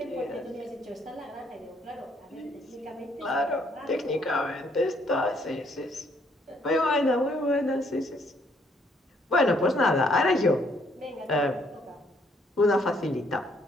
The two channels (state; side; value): normal; both; correlation 0.68